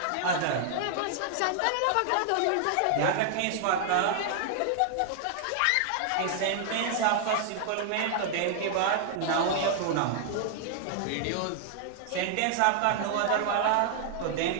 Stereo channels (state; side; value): different; both; correlation 0.00